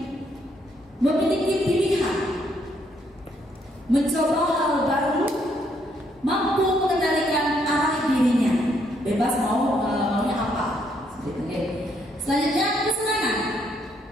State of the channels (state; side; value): normal; both; correlation 0.72